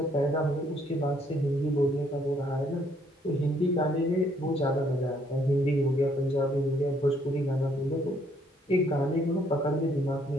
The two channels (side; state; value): both; normal; correlation 0.67